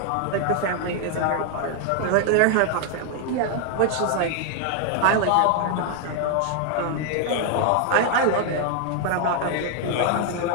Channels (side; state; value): both; different; correlation 0.00